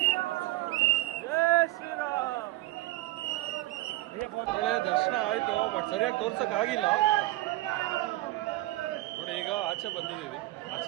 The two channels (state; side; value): quieter; left; 18.3 dB